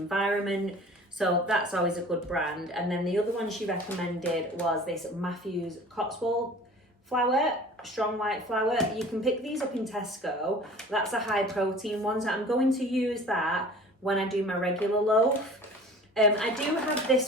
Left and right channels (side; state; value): both; normal; correlation 0.44